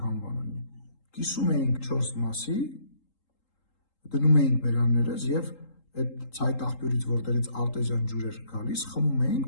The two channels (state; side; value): late; right; 3.8 ms